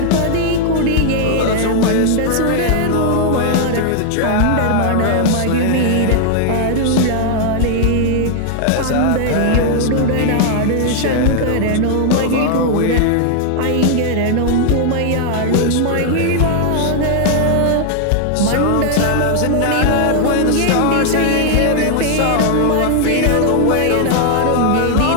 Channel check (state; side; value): different; both; correlation 0.00